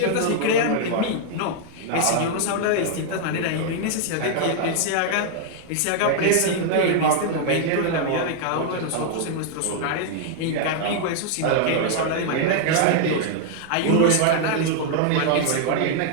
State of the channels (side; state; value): both; different; correlation -0.01